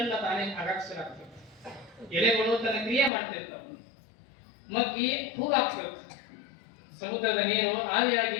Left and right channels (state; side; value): drops out; right; at 3.1 s